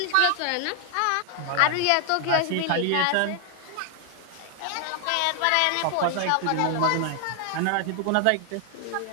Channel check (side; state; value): both; different; correlation 0.00